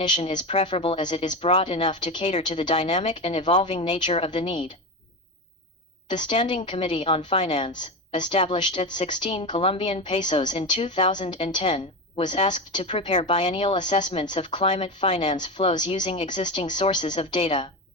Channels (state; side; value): normal; both; correlation 0.20